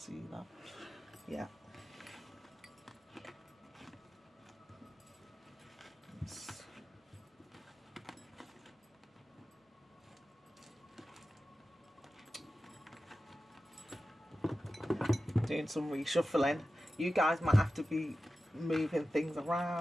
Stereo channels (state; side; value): normal; both; correlation 0.94